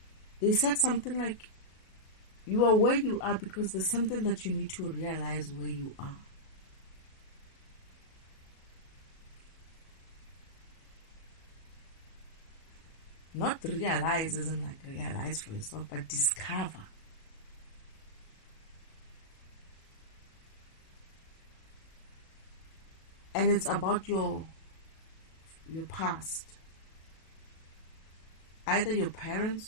they said something like, you are where you are because there's something that you need to realize where you are. Not realize isn't like realize for yourself, but discover. And it's about your past. Either your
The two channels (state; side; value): late; right; 37 ms